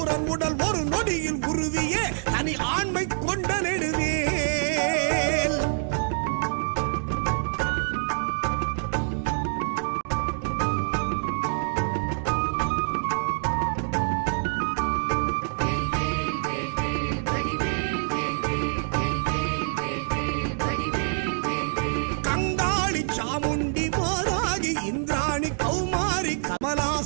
உடல் ஒரு நொடியில் உருவியே தனி ஆண்மை கொண்ட நெடுவே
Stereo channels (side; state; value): left; silent; 61 dB below the other